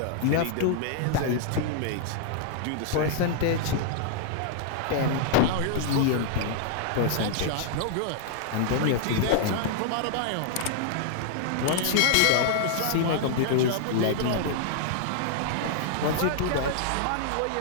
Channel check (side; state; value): both; different; correlation -0.01